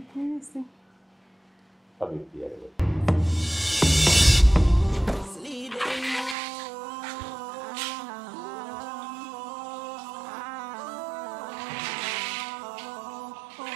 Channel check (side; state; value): left; drops out; at 6.4 s